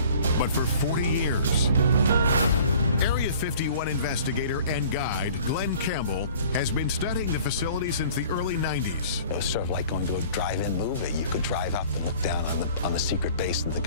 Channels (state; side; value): inverted; both; correlation -0.49